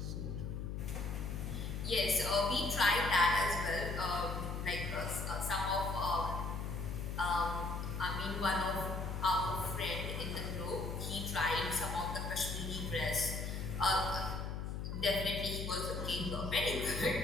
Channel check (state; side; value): noise; left; hum, 4 dB below the sound